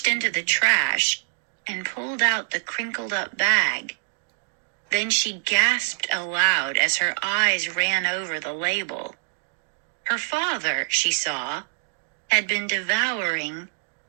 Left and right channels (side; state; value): left; silent; digital silence